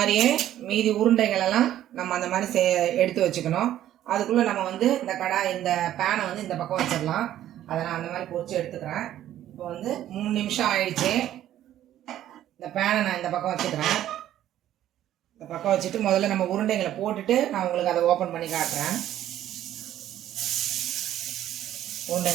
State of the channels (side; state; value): left; quieter; 12.3 dB